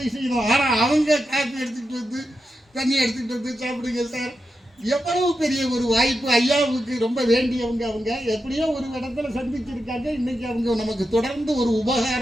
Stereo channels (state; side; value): normal; both; correlation 0.88